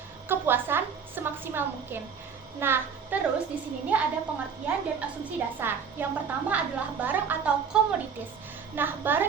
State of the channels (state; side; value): quieter; left; 6.5 dB